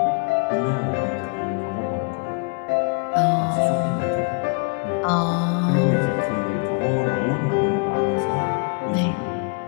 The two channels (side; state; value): right; quieter; 35.8 dB